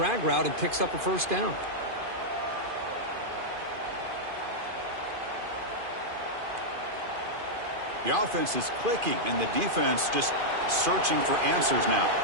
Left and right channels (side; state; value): left; late; 2.5 ms